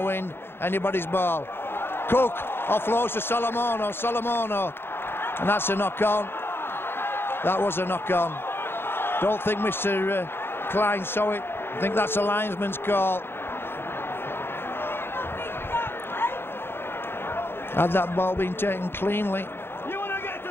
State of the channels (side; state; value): right; late; 0.11 ms